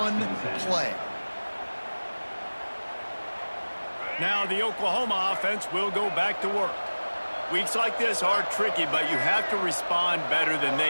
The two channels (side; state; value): both; inverted; correlation -1.00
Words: play. Now the Oklahoma offense will go back to work. Weeks like this are tricky, but you have to respond better than